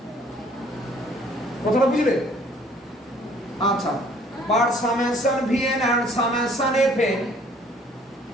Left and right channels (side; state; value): both; normal; correlation 0.58